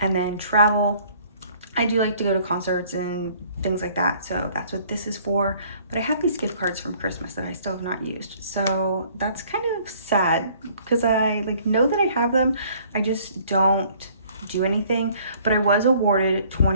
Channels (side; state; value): both; inverted; correlation -0.57